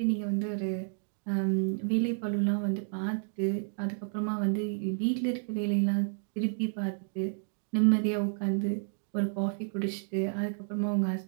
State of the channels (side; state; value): left; silent; digital silence